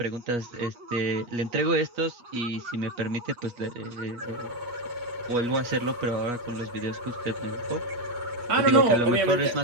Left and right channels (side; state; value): left; late; 8.3 ms